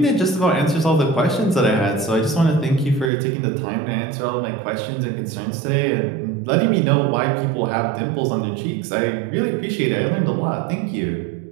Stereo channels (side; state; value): left; drops out; at 3.1 s